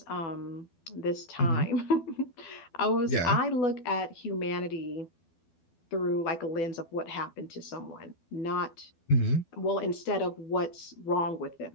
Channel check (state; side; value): late; right; 12 ms